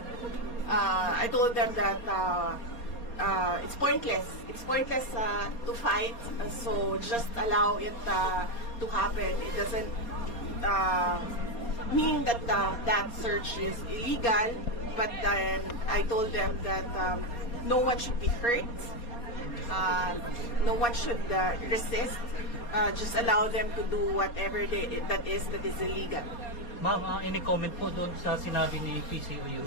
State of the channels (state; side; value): late; right; 4.2 ms